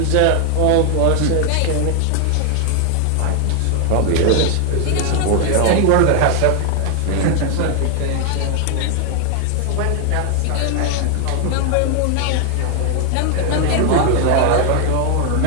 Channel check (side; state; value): both; different; correlation 0.00